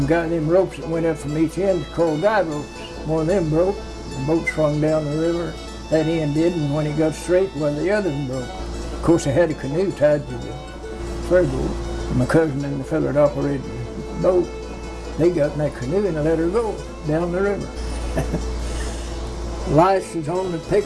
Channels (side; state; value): both; identical; correlation 1.00